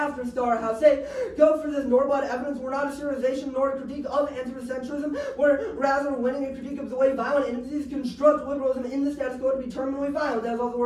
Star House. Say, go for this Norbad evidence. We're not a serialization nor a critique of anthropocentrism. We're rather winning a critique of the way violent entities construct liberalism in the status quo to be terminally violent. That's all the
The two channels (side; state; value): both; identical; correlation 1.00